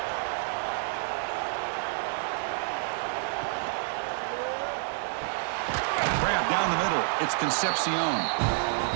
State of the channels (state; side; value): silent; left; 59 dB below the other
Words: Grab down the middle. It's Concepcion.